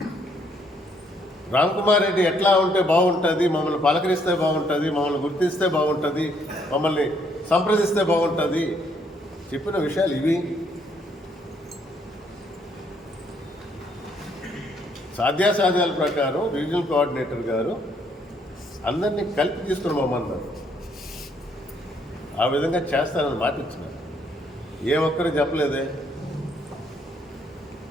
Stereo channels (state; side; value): normal; both; correlation 0.69